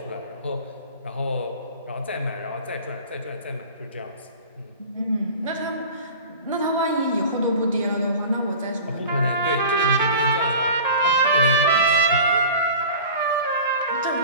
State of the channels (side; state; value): both; inverted; correlation -0.39